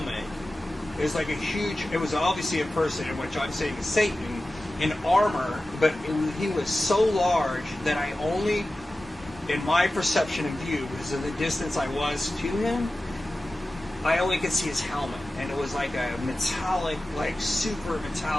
It was like it was obviously a person, in which I'm saying is Satan, in armor, but he was so large that I only, in my perception and view, because of the distance I was to him, I only could see his helmet. And it was like a metallic, like super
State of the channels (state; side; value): normal; both; correlation 0.95